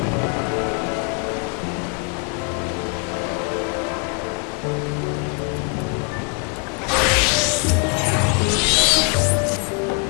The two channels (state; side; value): quieter; right; 36.0 dB